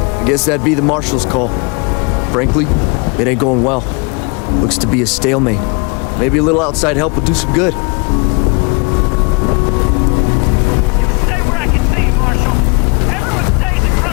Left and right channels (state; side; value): quieter; right; 31.5 dB